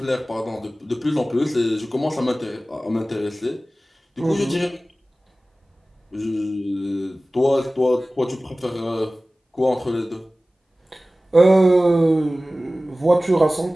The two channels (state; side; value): normal; both; correlation 0.97